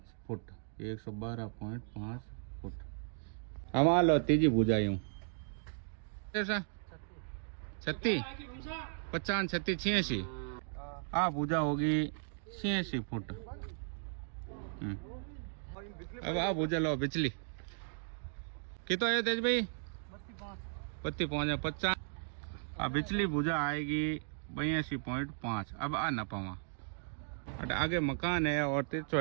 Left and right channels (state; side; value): silent; left; digital silence